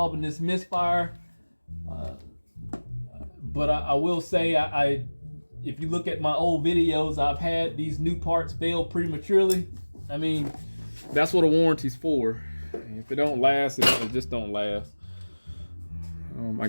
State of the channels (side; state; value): both; inverted; correlation -1.00